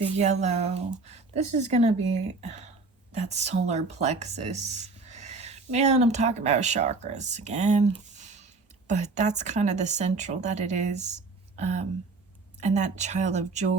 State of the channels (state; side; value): quieter; left; 3.8 dB